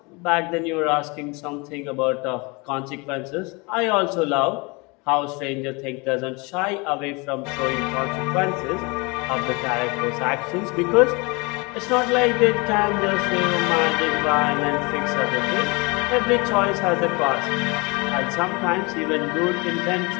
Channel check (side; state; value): right; quieter; 27.8 dB